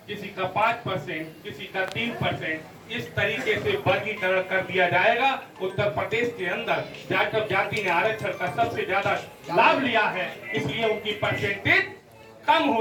किसी का 5%, किसी का 3%, इस तरीके से वर्गीकरण कर दिया जाएगा। उत्तर प्रदेश के अंदर जाटव जाति ने आरक्षण का सबसे ज्यादा लाभ लिया है, इसलिए उनकी परसेंटेज कम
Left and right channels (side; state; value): both; identical; correlation 1.00